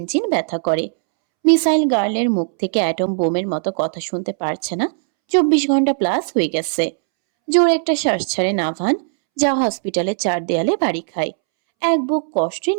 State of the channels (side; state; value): left; silent; 67 dB below the other